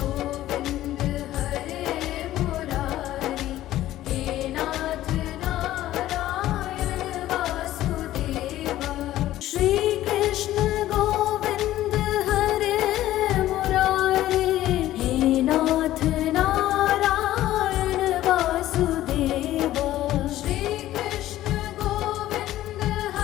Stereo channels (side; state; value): right; quieter; 14.3 dB